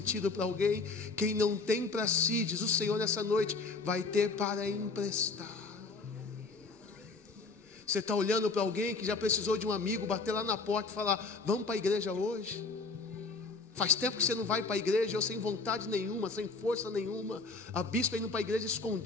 para alguém? Quem não tem para si, diz o Senhor nessa noite, vai ter para emprestar. Você está olhando para alguém que já precisou de um amigo bater lá na porta e falar, vamos para a igreja hoje? Faz tempo que você não vai para a igreja, eu sem vontade nenhuma, sem força nenhuma. A bispa indo para a igreja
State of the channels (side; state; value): right; quieter; 4.0 dB